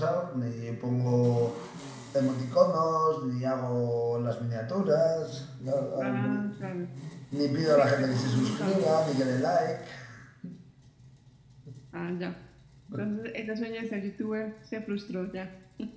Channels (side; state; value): both; identical; correlation 1.00